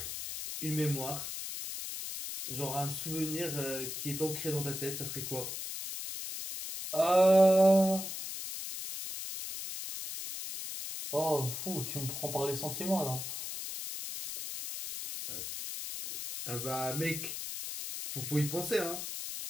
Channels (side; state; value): left; noise; hiss, 6 dB below the sound